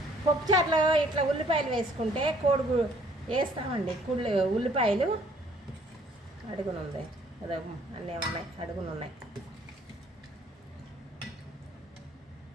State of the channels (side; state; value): both; normal; correlation 0.61